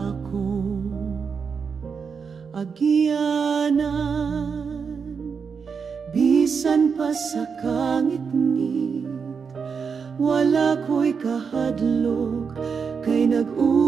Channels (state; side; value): quieter; left; 5.9 dB